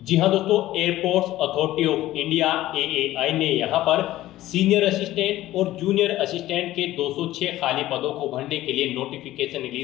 जी हाँ दोस्तों, airports authority of India AAI ने यहाँ पर सीनियर असिस्टेंट और जूनियर असिस्टेंट के 206 खाली पदों को भरने के लिए नोटिफिकेशन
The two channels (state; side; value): quieter; right; 15.3 dB